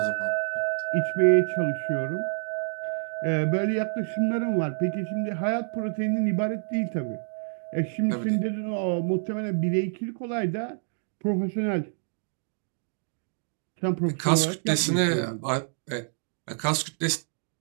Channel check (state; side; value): silent; left; digital silence